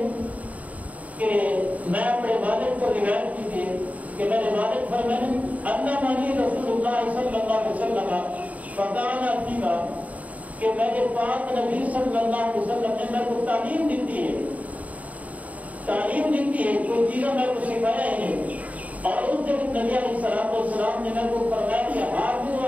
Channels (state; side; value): late; left; 0.070 ms